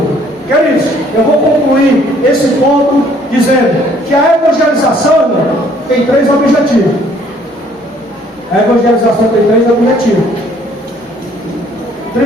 Queridos, eu vou concluir esse ponto dizendo que a evangelização, irmão, tem 3 objetivos. A evangelização tem 3 objetivos.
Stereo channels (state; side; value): normal; both; correlation 0.61